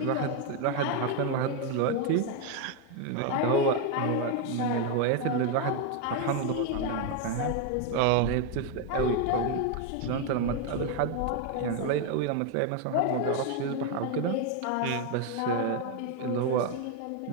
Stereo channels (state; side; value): different; both; correlation 0.01